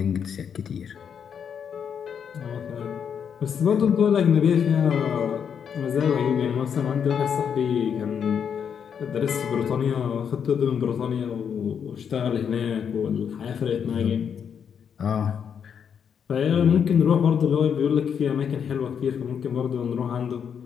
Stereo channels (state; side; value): quieter; right; 7.5 dB